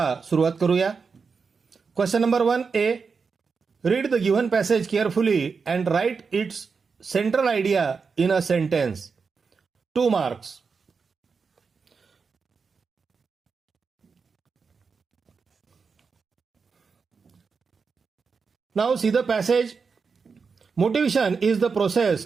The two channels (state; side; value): quieter; left; 5.2 dB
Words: सुरुवात करूया. Question number 1A. Read the given passage carefully and write its central idea in a sentence. 2 marks. Now see the passage. Motivation is the process